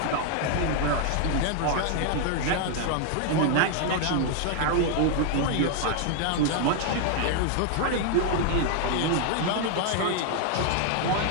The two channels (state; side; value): different; both; correlation 0.00